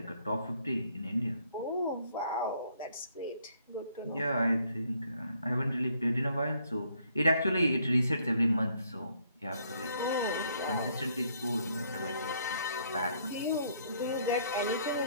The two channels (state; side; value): inverted; both; correlation -0.67